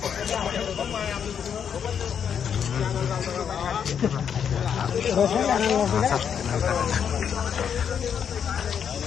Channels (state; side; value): quieter; right; 7.8 dB